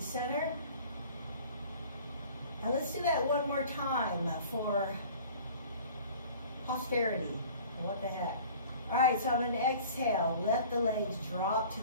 center. Now let's do that one more time for posterity. What the heck? All right, so I'm going to exhale. Let the legs drop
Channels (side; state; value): both; inverted; correlation -0.47